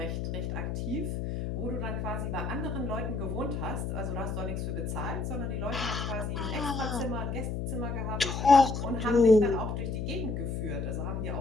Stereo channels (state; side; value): noise; left; hum, 3 dB below the sound